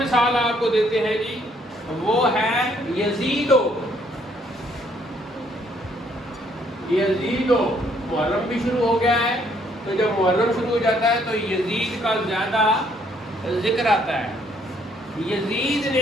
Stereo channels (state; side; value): normal; both; correlation 0.67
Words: آپ کو دیتے ہیں جی، وہ ہے یزیدو. یزیدو محرم بھی شروع ہو گیا ہے. تو جب محرم شروع ہو جاتا ہے تو یزید کا زیادہ ذکر آتا ہے. یزید